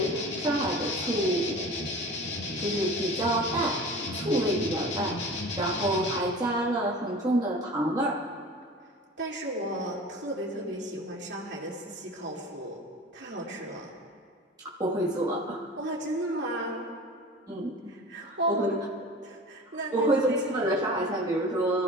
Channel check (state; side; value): normal; both; correlation 0.38